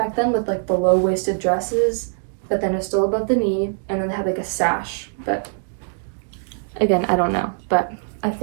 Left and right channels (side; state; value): left; silent; digital silence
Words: then, with like the low-waisted dresses, but then it's still above the knee, and then they have like a sash. But again, I don't know, but I